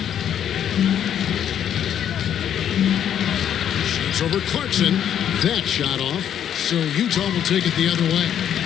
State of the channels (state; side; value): quieter; right; 9.6 dB